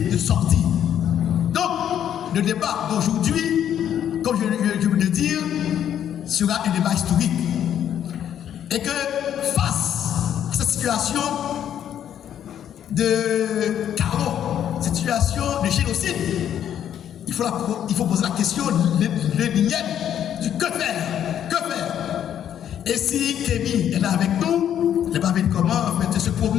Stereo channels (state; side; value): quieter; right; 10.0 dB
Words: de sortie. Donc, le débat d'aujourd'hui, comme je veux le dire, sera un débat historique. Et que face à cette situation de chaos, cette situation de génocide, il faut poser la question, l'énième, du que faire? Que faire? Et si Kémy est là avec nous, il n'est pas venu comment en fait, se